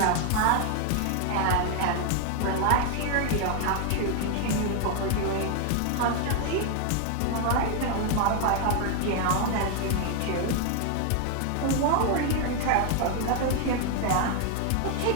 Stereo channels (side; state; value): both; different; correlation 0.00